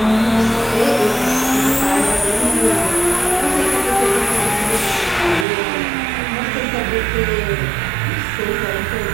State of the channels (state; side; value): drops out; left; at 5.5 s